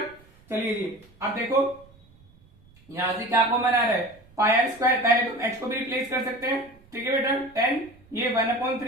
चलिए जी अब देखो यहां से क्या कॉमन आ रहा है, पाई आर स्क्वायर, पहले तुम एच को भी रिप्लेस कर सकते हैं। ठीक है बेटा, 10 ये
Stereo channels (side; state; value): right; noise; rumble, 28 dB below the sound